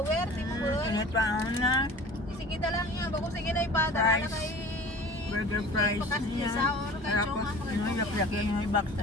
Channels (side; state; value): both; normal; correlation 0.42